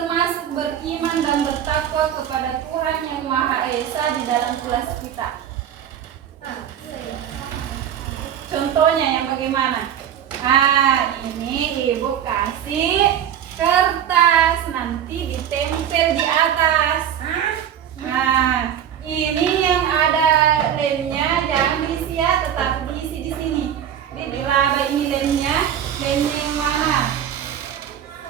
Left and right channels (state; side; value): quieter; left; 9.7 dB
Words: beriman dan bertakwa kepada Tuhan yang Maha Esa di dalam kelas kita. Contohnya yang bagaimana? Ini ibu kasih kertas, nanti ditempel di atas. Ini yang ada lemnya jangan diisi ya, tetap diisi di sini. Dilaba ini lemnya yang mana?